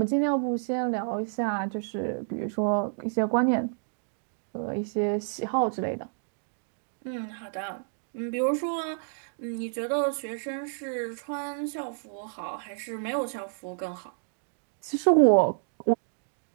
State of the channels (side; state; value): left; silent; digital silence